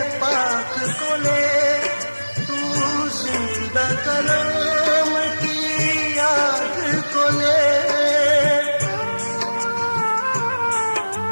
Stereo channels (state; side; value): inverted; both; correlation -1.00